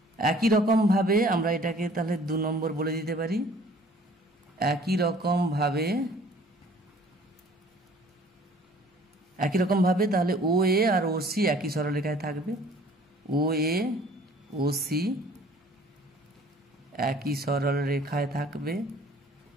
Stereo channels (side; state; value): both; normal; correlation 0.53